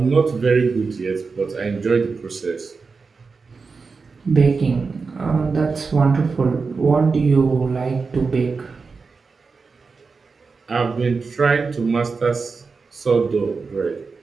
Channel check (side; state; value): left; quieter; 4.7 dB